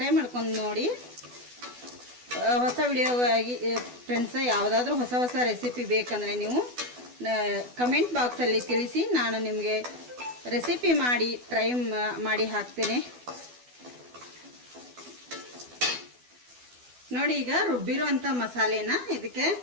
ಮಾಡ್ಕೊಂಡು ನೋಡಿ. ಹೊಸ ವಿಡಿಯೋಗಾಗಿ ಫ್ರೆಂಡ್ಸ್, ಯಾವುದಾದ್ರೂ ಹೊಸ ರೆಸಿಪಿ ಬೇಕಂದರೆ ನೀವು ಕಮೆಂಟ್ ಬಾಕ್ಸಲ್ಲಿ ತಿಳಿಸಿ. ನಾನು ನಿಮಗೆ ರೆಸಿಪಿ ಮಾಡಿ ಟ್ರೈ ಮಾಡಿ ಹಾಕ್ತೇನೆ. ನೋಡಿ, ಈಗ ರುಬ್ಬಿರುವಂಥ ಮಸಾಲೆನ ಇದಕ್ಕೆ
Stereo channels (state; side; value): late; left; 12 ms